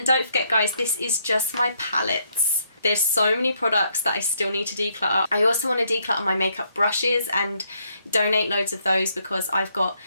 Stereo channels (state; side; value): inverted; both; correlation -0.73